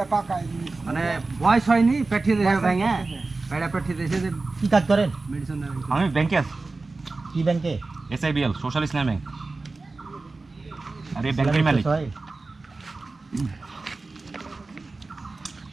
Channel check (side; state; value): left; quieter; 3.6 dB